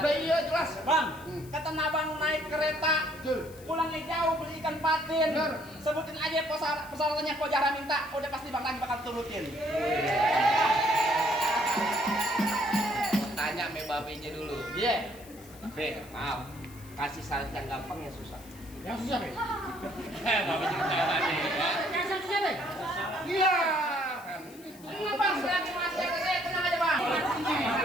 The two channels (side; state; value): left; noise; hiss, 21 dB below the sound